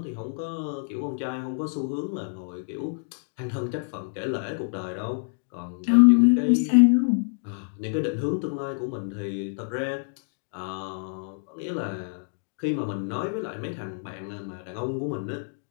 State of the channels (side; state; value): right; silent; digital silence